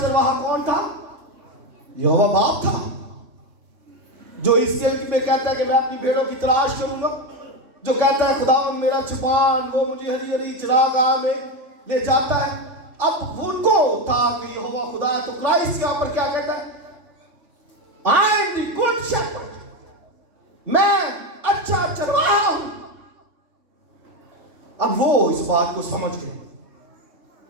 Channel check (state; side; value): late; left; 3.5 ms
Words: چرواہا کون تھا؟ یہوہ باپ تھا، جو اس کے میں کہتا ہے کہ میں اپنی بھیڑوں کی تلاش کروں گا، جو کہتا ہے خدا میرا چھپان، وہ مجھے ہری ہری چراگاہ میں لے جاتا ہے۔ اب ان کو تھا کہ یہوہ خدا ہے، تو کرائسٹ یہاں پر کیا کہتا ہے؟ I am the good shepherd، میں اچھا چرواہا ہوں۔ اب وہ اس بات کو سمجھ گئے،